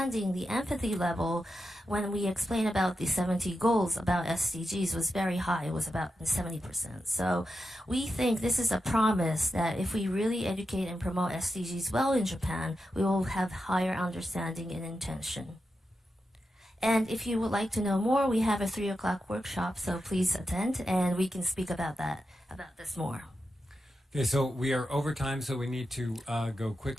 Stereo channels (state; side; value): normal; both; correlation 0.88